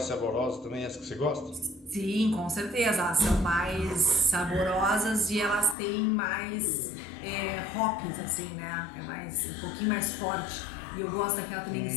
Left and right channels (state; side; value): drops out; right; at 5.8 s